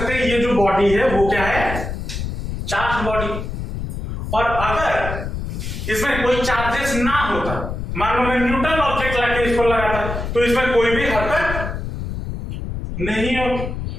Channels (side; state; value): left; noise; rumble, 5 dB below the sound